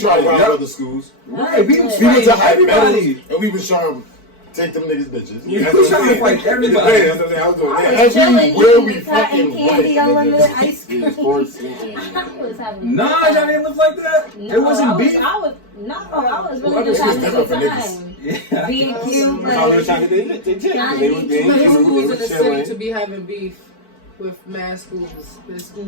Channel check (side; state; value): right; late; 4.5 ms